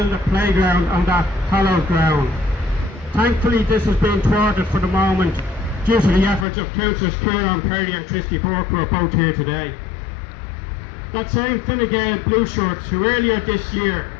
a playground on that hallowed ground. Thankfully, this has been thwarted for the moment due to the efforts of Councillors Kieran Perry and Christy Burke, who are both here today. That same Fine Gael Blue Shirts who earlier this year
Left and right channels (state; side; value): drops out; right; at 6.5 s